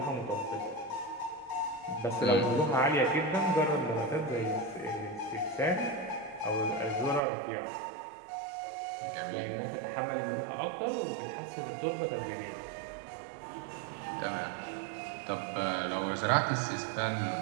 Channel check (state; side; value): drops out; left; at 7.2 s